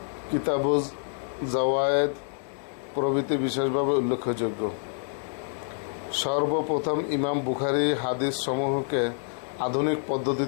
কিতাবুজ জাওয়ায়েদ প্রভৃতি বিশেষভাবে উল্লেখযোগ্য। সর্বপ্রথম ইমাম বুখারী হাদিস সমূহকে আধুনিক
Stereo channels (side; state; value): right; silent; digital silence